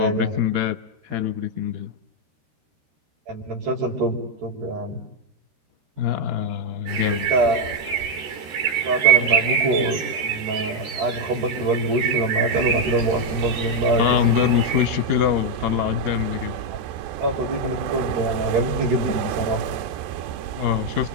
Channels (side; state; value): left; late; 13 ms